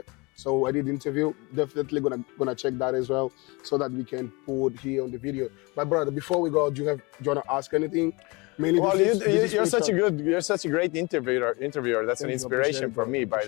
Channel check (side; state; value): right; quieter; 26.6 dB